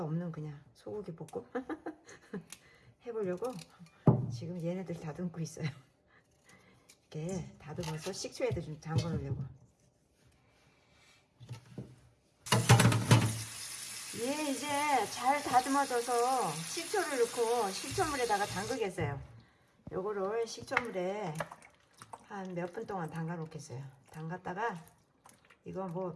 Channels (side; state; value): both; identical; correlation 1.00